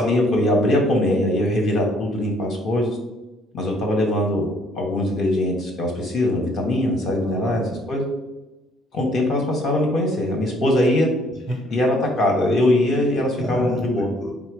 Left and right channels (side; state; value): both; normal; correlation 0.63